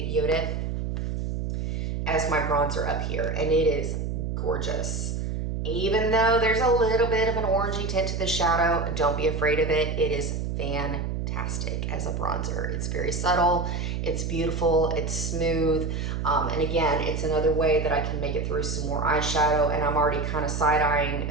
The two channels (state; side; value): noise; right; hum, 2 dB below the sound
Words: Yodit as my bronzer up here, and it is gorgeous. Even though there's a little bit of an orangey tint to the shadow, don't be afraid of it. It is fantastic as a bronzer. It's very subtle, it's beautiful, it's smooth, and again, it's another way that I can make it through some more eyeshadow. And I'm already kind of